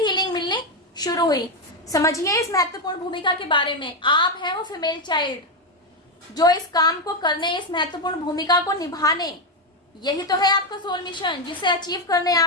मिलनी शुरू हुई। समझिए इस महत्वपूर्ण भूमिका के बारे में। आप हैं वो फीमेल चाइल्ड जो इस काम को करने, इस महत्वपूर्ण भूमिका को निभाने, यही तो है आपका सोल मिशन जिसे अचीव करने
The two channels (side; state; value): both; normal; correlation 0.07